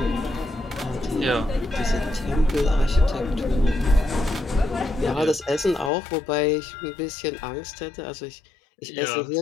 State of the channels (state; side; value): drops out; right; at 5.9 s